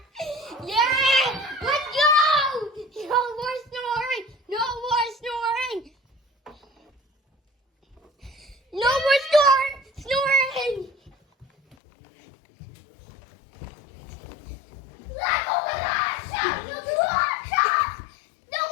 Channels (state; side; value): drops out; right; at 11.8 s